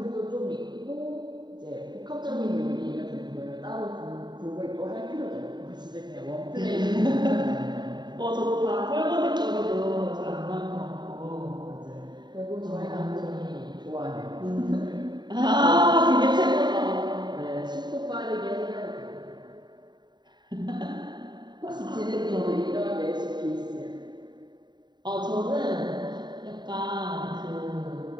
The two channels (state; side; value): late; left; 0.21 ms